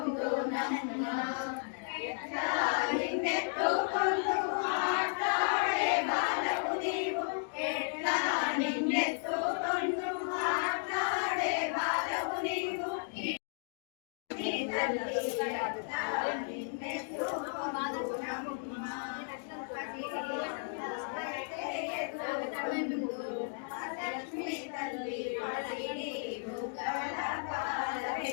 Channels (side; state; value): right; silent; 55 dB below the other